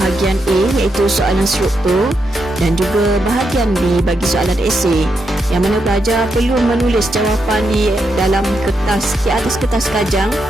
A, iaitu soalan struktur, dan juga bahagian B bagi soalan esei, yang mana pelajar perlu menulis jawapan di dalam kertas, di atas kertas kajang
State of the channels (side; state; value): both; normal; correlation 0.82